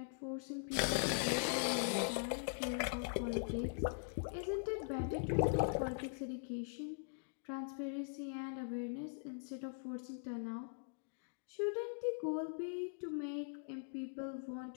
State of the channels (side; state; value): right; silent; digital silence